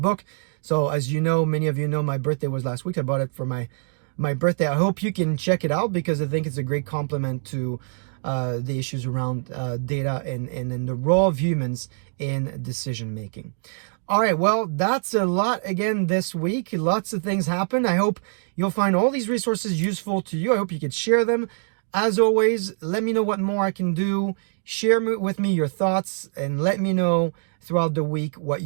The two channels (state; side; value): silent; left; 62 dB below the other